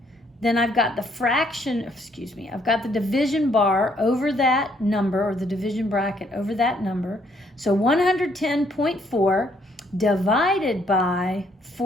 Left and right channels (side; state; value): both; normal; correlation 0.68